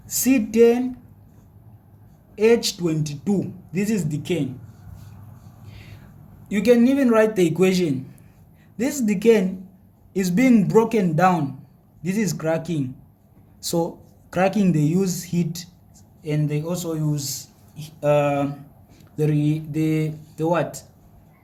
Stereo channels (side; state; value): both; identical; correlation 1.00